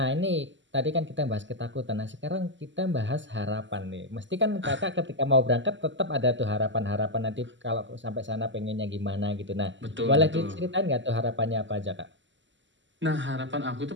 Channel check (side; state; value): left; late; 0.54 ms